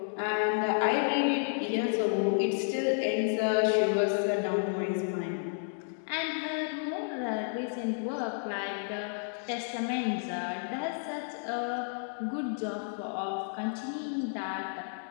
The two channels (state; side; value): silent; right; digital silence